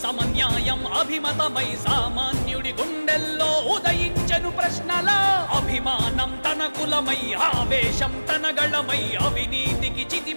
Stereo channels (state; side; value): inverted; both; correlation -1.00